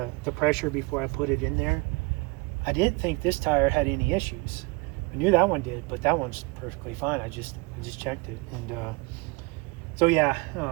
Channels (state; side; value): quieter; left; 26.8 dB